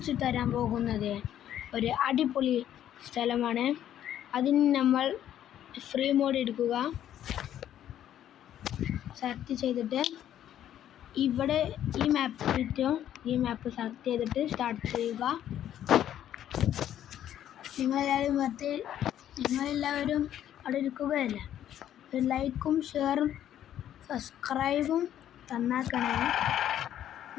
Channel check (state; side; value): quieter; right; 11.1 dB